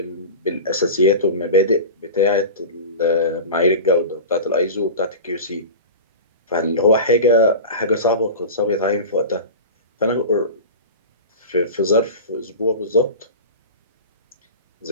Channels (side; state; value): both; inverted; correlation -0.31